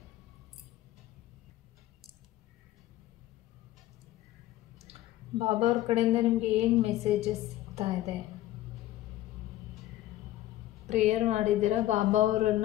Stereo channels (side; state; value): right; quieter; 14.7 dB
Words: ಬಾಬಾ ಅವ್ರ ಕಡೆಯಿಂದ ನಿಮಗೆ ಏನು ಮೆಸೇಜಸ್ ಸಿಗ್ತಾ ಇದೆ? ಪ್ರೇಯರ್ ಮಾಡಿದ್ದೀರಾ, ಬಾಬಾ